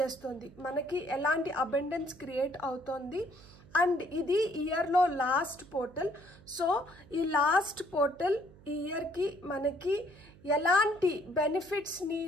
మనకి ఎలాంటి అబండెన్స్ క్రియేట్ అవుతోంది అండ్ ఇది ఇయర్ లో లాస్ట్ పోర్టల్। సో ఈ లాస్ట్ పోర్టల్ ఈ ఇయర్ కి మనకి ఎలాంటి బెనిఫిట్స్ ని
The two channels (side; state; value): right; noise; hum, 23 dB below the sound